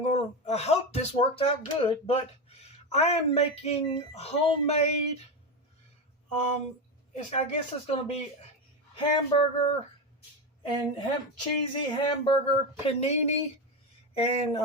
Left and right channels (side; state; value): both; normal; correlation 0.16